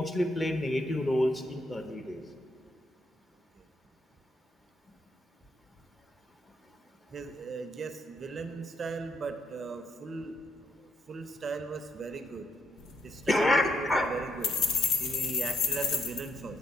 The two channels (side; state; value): both; normal; correlation 0.75